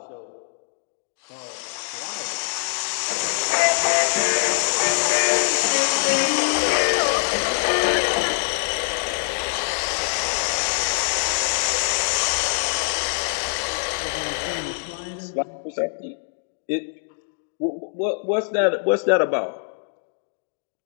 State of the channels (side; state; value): right; silent; digital silence